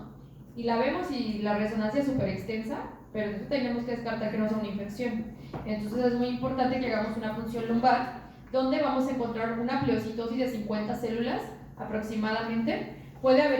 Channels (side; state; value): both; identical; correlation 1.00